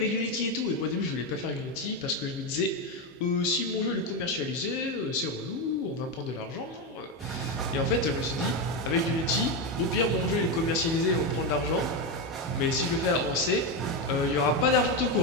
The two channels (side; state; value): both; normal; correlation 0.11